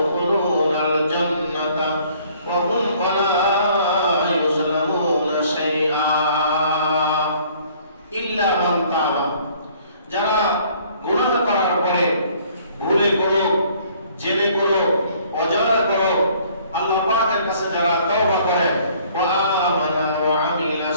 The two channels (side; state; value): both; inverted; correlation -0.58